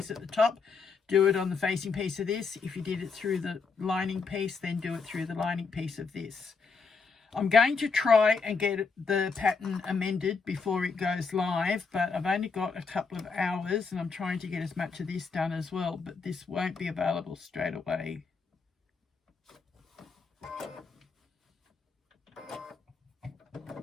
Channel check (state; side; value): quieter; right; 4.9 dB